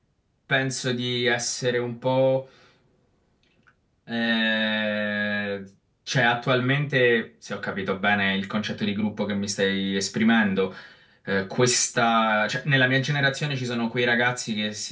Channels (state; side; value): identical; both; correlation 1.00